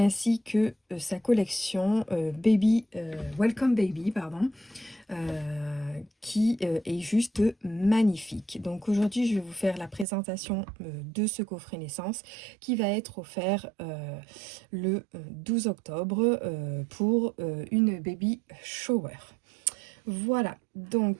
que sa collection Welcome Baby, pardon. Qui est juste magnifique. Donc aujourd'hui, je vais vous faire la présentation de ce coffret naissance qui va être offert le 12 octobre pour une baby shower. Voilà,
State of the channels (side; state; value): left; drops out; at 10.1 s